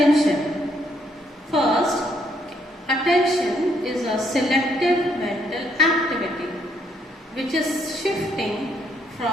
First, attention is a selective mental activity which is shifting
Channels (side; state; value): both; normal; correlation 0.71